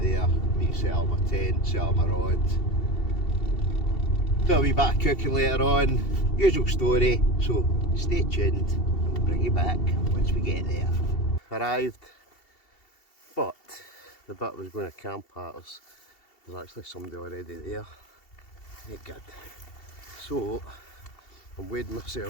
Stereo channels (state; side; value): late; right; 2.7 ms